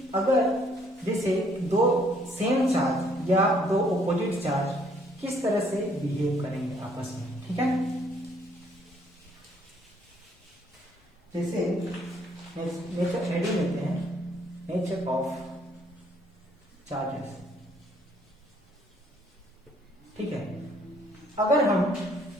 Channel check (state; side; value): normal; both; correlation 0.65